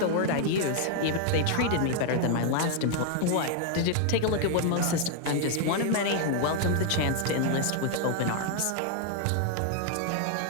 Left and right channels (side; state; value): both; different; correlation 0.00